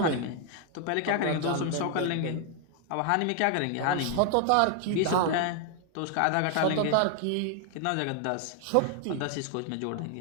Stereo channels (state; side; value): different; both; correlation 0.00